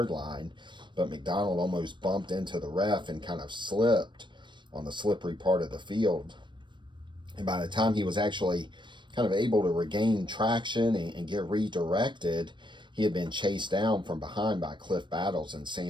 line, but McDonald almost bumped into the ref and kind of slipped on the slippery part of the field. And by the time he was actually kind of able to regain traction and get redirected, he had been chased down from behind by Cliff Battles and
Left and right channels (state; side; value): late; left; 0.22 ms